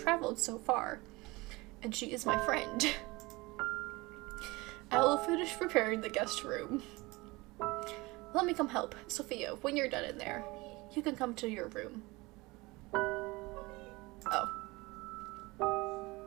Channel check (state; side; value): quieter; left; 22.9 dB